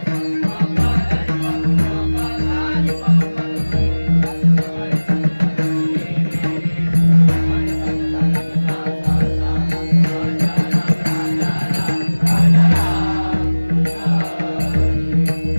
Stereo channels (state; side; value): inverted; both; correlation -1.00